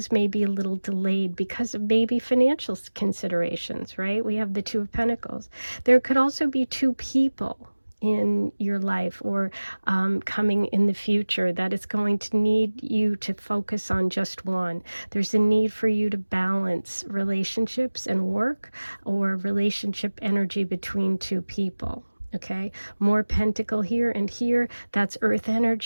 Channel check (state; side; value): inverted; both; correlation -1.00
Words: may be a little delayed because of maybe financial considerations, right? We have the Two of Pentacles. There could also be two people in your life or coming in the future that is going to need you to focus on just one. There's a need for you to balance relationships and work, or relationship energy between two people. Okay, more pentacle here and here. That's earth